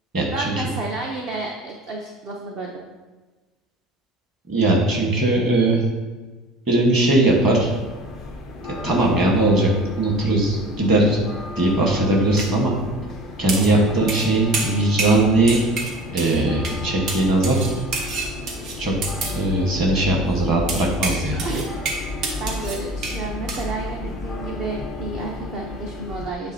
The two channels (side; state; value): both; normal; correlation 0.42